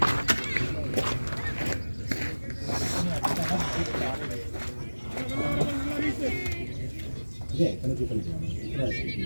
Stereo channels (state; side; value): inverted; both; correlation -1.00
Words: ஏன் கணக்கு பண்ணிக்கலாம்